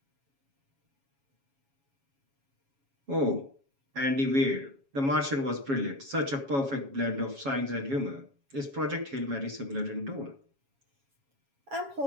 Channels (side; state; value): left; late; 7.2 ms